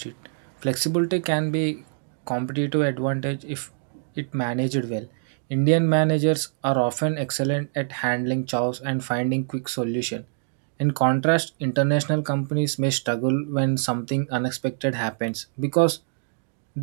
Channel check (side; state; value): left; silent; digital silence